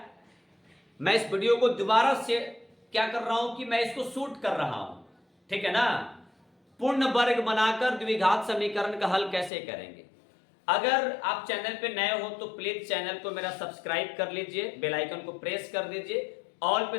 मैं इस वीडियो को दोबारा से क्या कर रहा हूं कि मैं इसको शूट कर रहा हूं, ठीक है ना। पूर्ण वर्ग बनाकर द्विघात समीकरण का हल कैसे करेंगे। अगर आप चैनल पे नए हो तो प्लीज चैनल को मेरा सब्सक्राइब कर लीजिए, बेल आइकन को प्रेस कर दीजिए, ऑल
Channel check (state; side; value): drops out; right; at 9.5 s